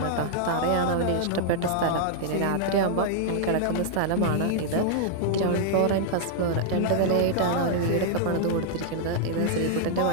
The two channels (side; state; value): both; different; correlation -0.01